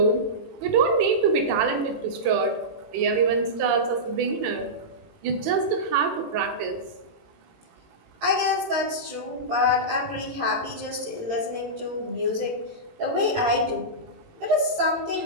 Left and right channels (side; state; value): left; late; 18 ms